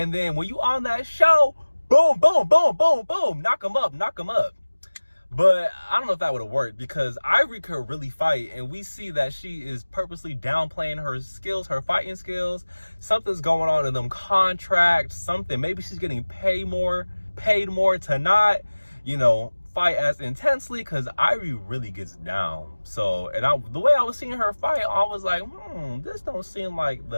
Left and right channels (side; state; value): both; inverted; correlation -1.00